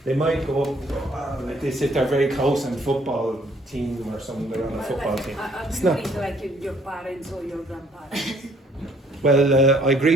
go up like this if they're very close in football team or something. They're on a football team. It's not. Like your parents or your grandparents. Well, I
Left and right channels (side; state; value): both; normal; correlation 0.63